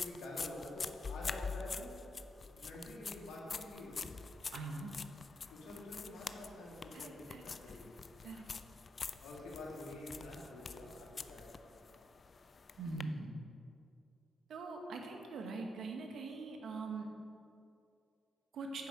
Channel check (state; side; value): normal; both; correlation 0.81